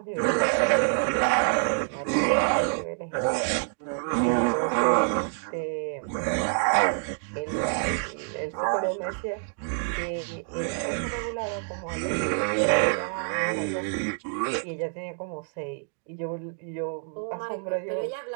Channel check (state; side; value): silent; left; 60 dB below the other